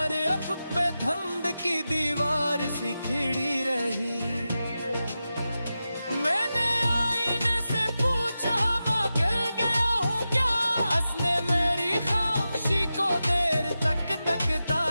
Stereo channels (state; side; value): inverted; both; correlation -0.92